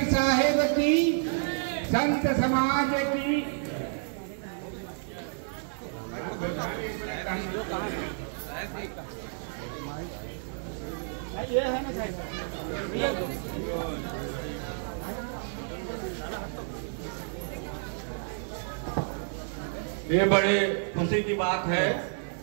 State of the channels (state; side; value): silent; left; 58 dB below the other